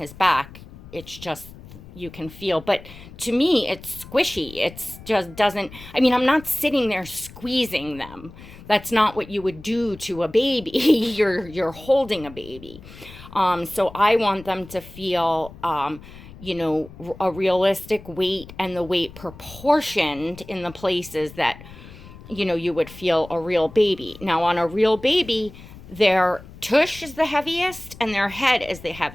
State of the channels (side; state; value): left; noise; rumble, 18 dB below the sound